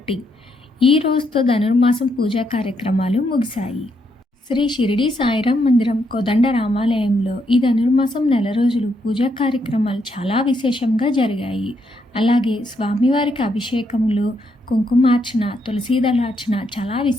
ఈ రోజుతో ధనుర్మాసం పూజా కార్యక్రమాలు ముగిశాయి. శ్రీ షిరిడి సాయిరాం మందిరం కోదండ రామాలయంలో ఈ ధనుర్మాసం నెల రోజులు పూజా కార్యక్రమాలు చాలా విశేషంగా జరిగాయి. అలాగే స్వామివారికి అభిషేకములు, కుంకుమార్చన, తులసీదళార్చన చాలా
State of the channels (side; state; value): both; normal; correlation 0.77